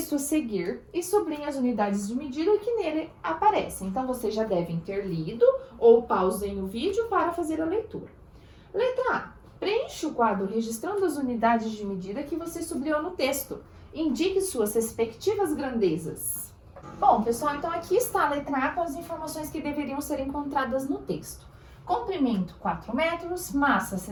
a seguir e sublinhe as unidades de medida que nele aparecem. Então, vocês já devem ter lido ou pausem o vídeo para fazer a leitura. Letra A. Preencha o quadro registrando as unidades de medida que você sublinhou no texto. Indique suas respectivas grandezas. Bom, pessoal, então aqui está a letra A com as informações que deveriam ser encontradas no texto. Comprimento 4 metros, massa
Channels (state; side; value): identical; both; correlation 1.00